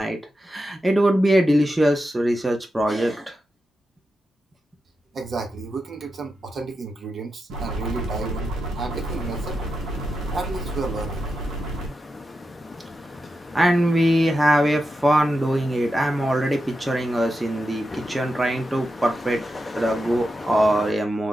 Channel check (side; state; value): both; normal; correlation 0.89